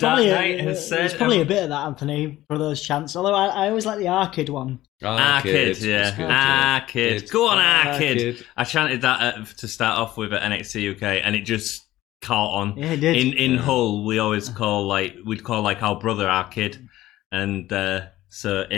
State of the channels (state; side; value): quieter; right; 15.6 dB